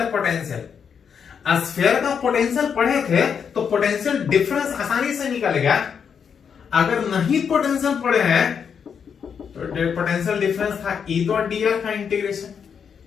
पोटेंशियल, स्फीयर का पोटेंशियल पढ़े थे तो पोटेंशियल डिफरेंस आसानी से निकलेगा। अगर नहीं पोटेंशियल पढ़े हैं तो पोटेंशियल डिफरेंस था ई डॉट डी आर का इंटीग्रेशन।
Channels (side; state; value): right; quieter; 7.0 dB